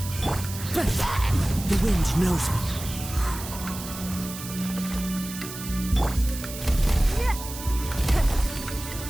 The wind knows me.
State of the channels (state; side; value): noise; right; hiss, 11 dB below the sound